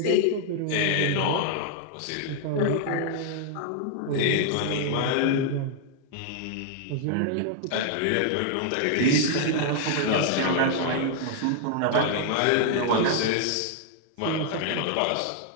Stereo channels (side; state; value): both; different; correlation 0.00